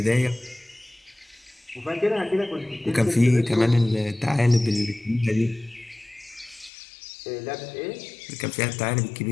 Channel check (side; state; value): right; drops out; at 6.7 s